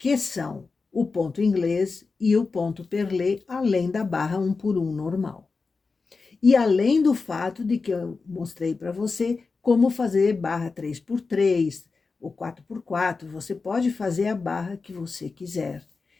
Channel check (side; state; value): right; quieter; 4.4 dB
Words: são o ponto inglês e o ponto perlé, além da barra 1 por 1 normal. E além do fato de que eu mostrei para você como fazer barra 3 por 3 ou 4 por 4, você pode fazer a barra que você quiser.